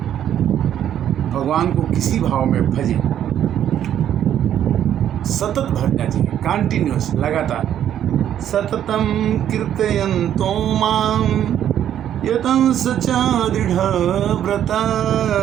भगवान को किसी भाव में भजे, सतत भजना चाहिए, कंटिन्यूअस, लगातार। सततम कीर्तयन्तो मां यतंस च दृढव्रता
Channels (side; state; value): left; quieter; 10.4 dB